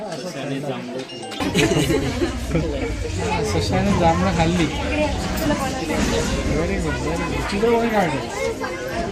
सशाने जांभळं खाल्ली. Very good very good. चित्र कोणी काढलं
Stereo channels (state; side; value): identical; both; correlation 1.00